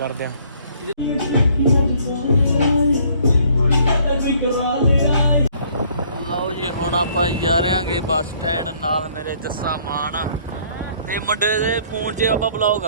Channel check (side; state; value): both; inverted; correlation -0.61